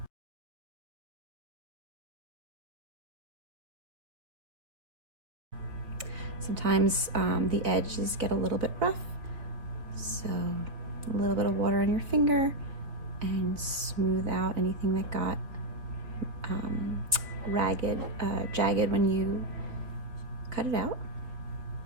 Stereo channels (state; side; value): late; left; 3.5 ms